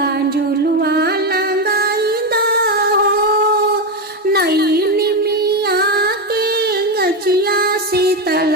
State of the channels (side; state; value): both; normal; correlation 0.11